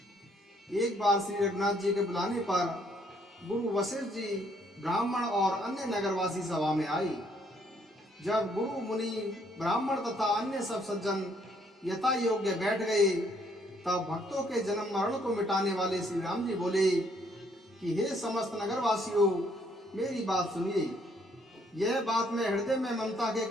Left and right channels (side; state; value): both; normal; correlation 0.67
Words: एक बार श्री रघुनाथ जी के बुलाने पर गुरु वशिष्ठ जी ब्राह्मण और अन्य नगरवासी सभा में आई। जब गुरु मुनि ब्राह्मण तथा अन्य सब सज्जन यथा योग्य बैठ गए, तब भक्तों के जन्म मरण को मिटाने वाले श्री राम जी बोले कि हे समस्त नगरवासियों, मेरी बात सुनिए। यह बात मैं हृदय में ममता के